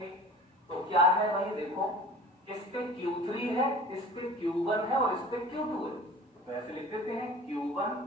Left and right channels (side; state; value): both; normal; correlation 0.42